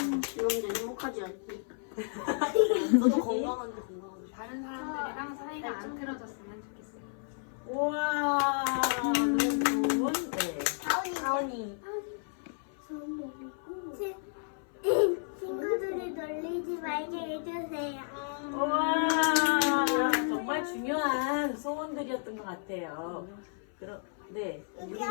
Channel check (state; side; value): silent; right; 56 dB below the other